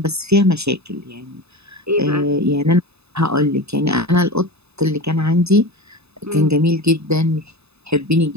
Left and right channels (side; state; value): left; late; 0.79 ms